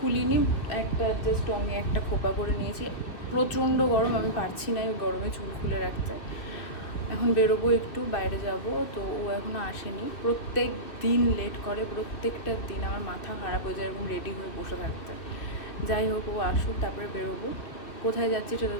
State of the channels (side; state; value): right; late; 2.3 ms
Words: একটা জাস্ট আমি একটা খোপা করে নিয়েছি। প্রচণ্ড গরম, আমি পারছি না এই গরমে চুল খুলে রাখতে। এখন বেরোবো, একটু বাইরে যাব। তো ও এখনও আসেনি, প্রত্যেক দিন লেট করে, প্রত্যেকটা দিন আমার মাথা খারাপ হয়ে যায় এরকম রেডি হয়ে বসে থাকতে। যাই হোক, ও আসুক, তারপরে বেরোবো। কোথায় যাচ্ছি সেটা